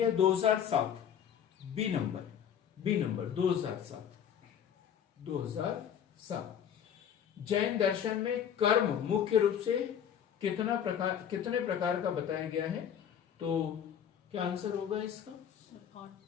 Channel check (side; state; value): right; quieter; 8.8 dB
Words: 2007। B number 2007। जैन दर्शन में कर्म मुख्य रूप से कितने प्रकार का बताया गया है? तो क्या आंसर होगा इसका?